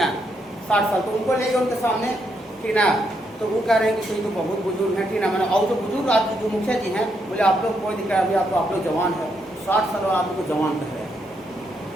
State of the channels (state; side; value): normal; both; correlation 0.78